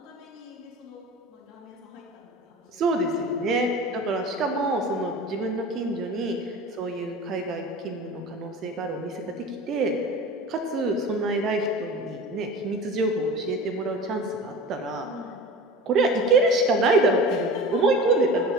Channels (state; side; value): normal; both; correlation 0.35